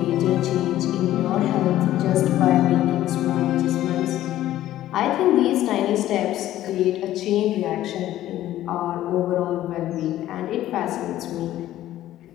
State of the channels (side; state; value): right; quieter; 13.7 dB